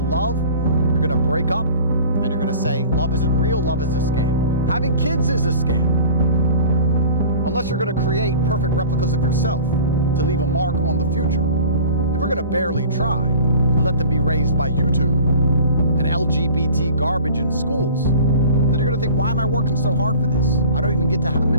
you're going to break up and you're going to say, love isn't real, love is a scam. Having kids is a scam. Unless you're going to create perfect replicas of yourself to leave a mark on the future. If we're going to barely try and let them be raised by YouTube and LGBT garbage in schools, then you're going to think, why am I working so hard for this? I don't even get to have a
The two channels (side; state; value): both; inverted; correlation -0.42